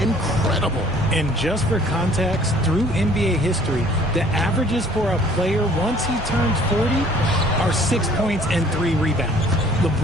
incredible. And just for context, through NBA history, the averages for a player once he turns 40 are 6 points and 3 rebounds.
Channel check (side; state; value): both; normal; correlation 0.55